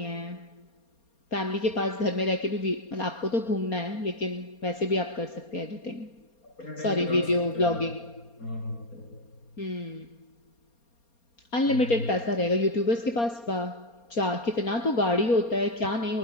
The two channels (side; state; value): right; late; 4.3 ms